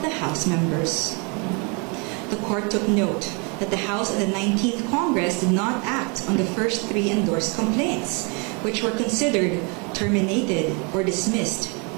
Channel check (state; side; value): quieter; left; 32.7 dB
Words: the House members. The court took note that the House of the 19th Congress did not act on the first 3 endorsed complaints, which were considered terminated or dismissed